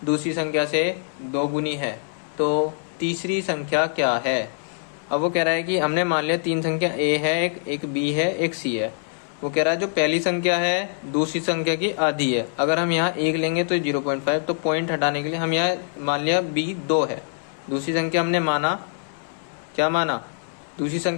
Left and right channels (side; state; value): right; silent; 63 dB below the other